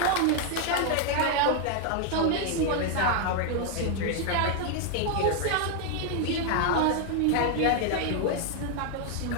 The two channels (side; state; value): both; different; correlation 0.01